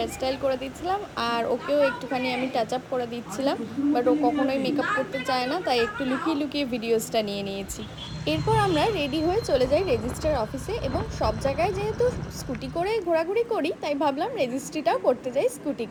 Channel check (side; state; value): both; identical; correlation 1.00